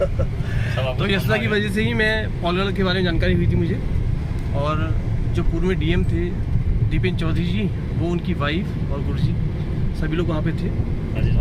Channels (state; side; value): identical; both; correlation 1.00